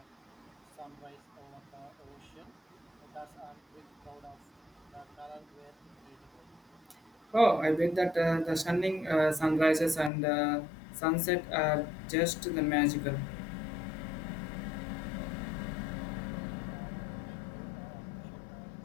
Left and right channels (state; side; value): drops out; right; at 10.1 s